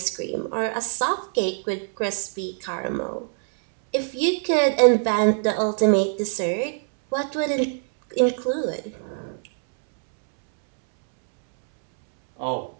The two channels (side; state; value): left; silent; 63 dB below the other